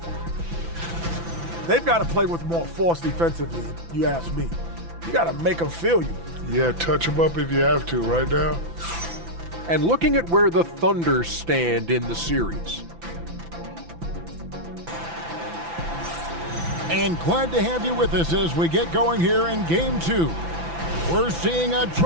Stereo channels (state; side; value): late; left; 5.9 ms